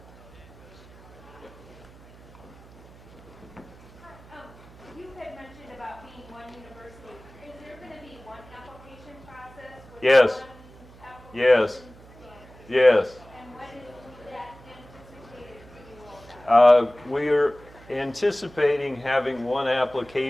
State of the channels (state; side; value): noise; right; hum, 22 dB below the sound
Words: You had mentioned about being one university. Is there going to be one application process? With Yes. one application Yes. standard? Yes. And when is that anticipated to be rolled out? We're anticipating having one